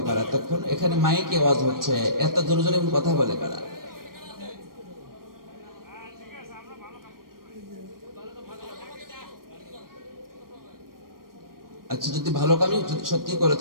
কারা? তখন এখানে মাইকে আওয়াজ হচ্ছে, এত জোরে জোরে কথা বলে কারা? আচ্ছা, যদি ভালো কামই সত্যি করে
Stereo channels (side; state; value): left; late; 0.92 ms